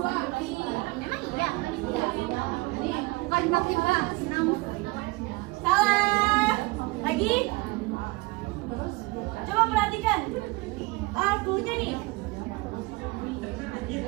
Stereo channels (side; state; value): left; quieter; 23.4 dB